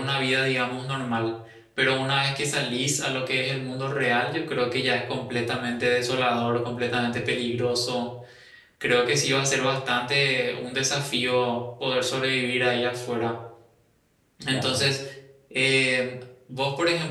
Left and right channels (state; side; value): identical; both; correlation 1.00